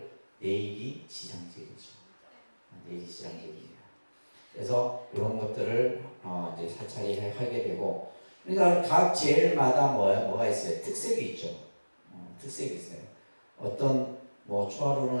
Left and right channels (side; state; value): both; inverted; correlation -1.00